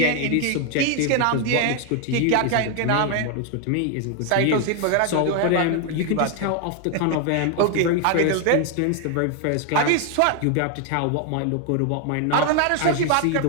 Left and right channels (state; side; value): different; both; correlation 0.00